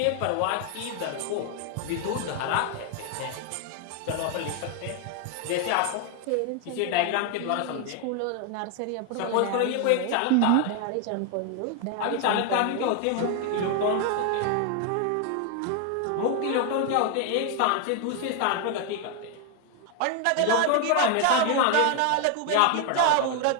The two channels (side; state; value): both; different; correlation 0.01